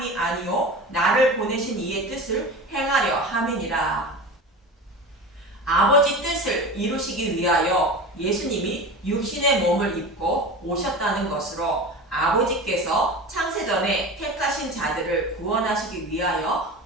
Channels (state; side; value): normal; both; correlation 0.31